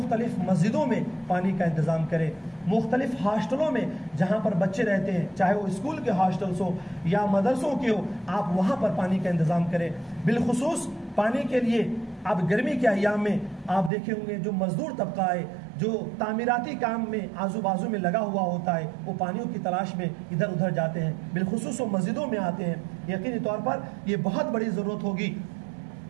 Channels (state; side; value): drops out; left; at 13.9 s